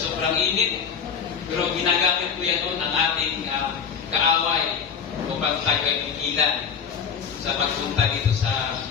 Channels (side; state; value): right; quieter; 6.8 dB